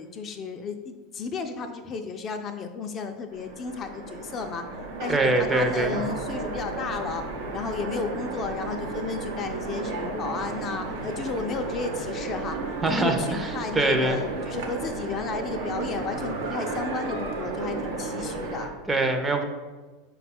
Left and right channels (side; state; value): both; normal; correlation 0.35